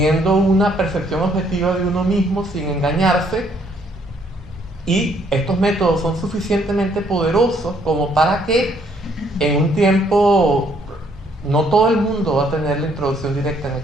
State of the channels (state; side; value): normal; both; correlation 0.67